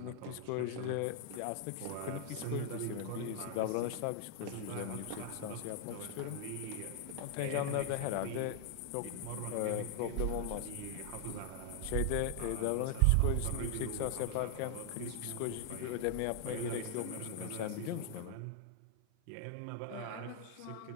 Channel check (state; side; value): different; both; correlation 0.00